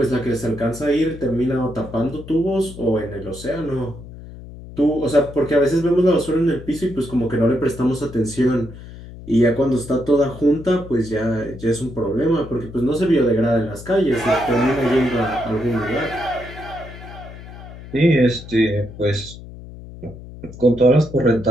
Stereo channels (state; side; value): noise; left; hum, 15 dB below the sound